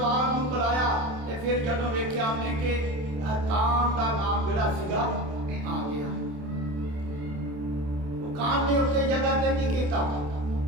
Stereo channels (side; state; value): left; late; 28 ms